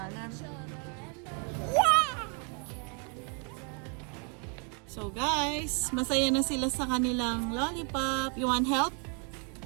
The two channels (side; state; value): left; quieter; 38.5 dB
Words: So guys, masaya na sila sa kanilang lollipop. You want help?